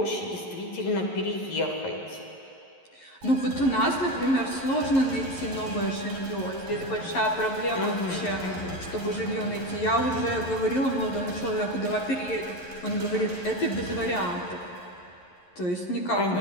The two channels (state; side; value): late; right; 11 ms